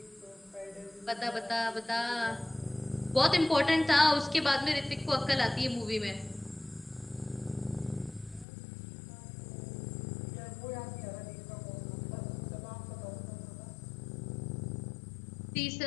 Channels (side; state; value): right; drops out; at 8.5 s